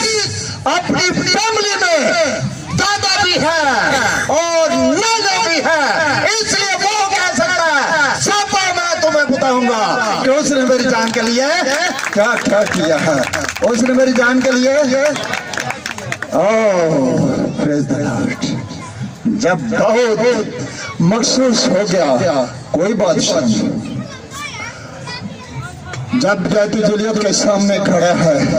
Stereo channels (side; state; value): both; identical; correlation 1.00